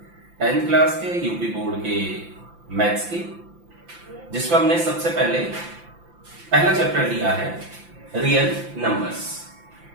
10th क्लास के यूपी बोर्ड के मैथ्स की, जिसमें हमने सबसे पहले पहला चैप्टर लिया है रियल नंबर्स।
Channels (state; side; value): late; left; 5.8 ms